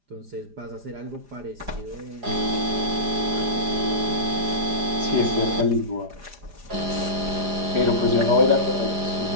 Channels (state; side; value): late; left; 4.9 ms